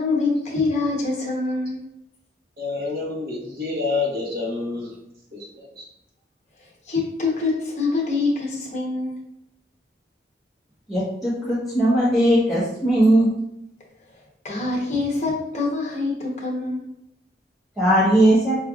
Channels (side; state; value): both; normal; correlation 0.70